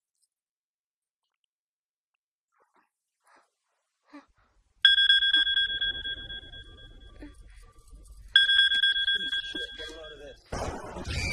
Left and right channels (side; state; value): both; identical; correlation 1.00